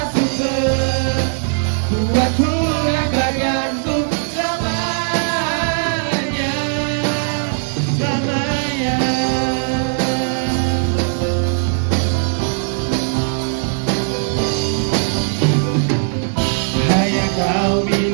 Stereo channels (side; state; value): left; silent; 67 dB below the other